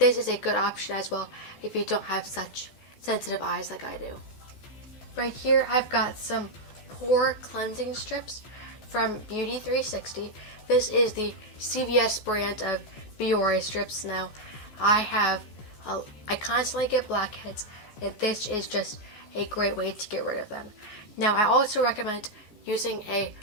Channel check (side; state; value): right; late; 14 ms